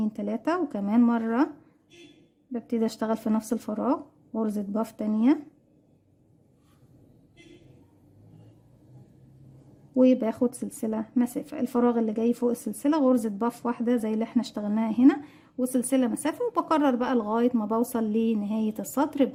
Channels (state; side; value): identical; both; correlation 1.00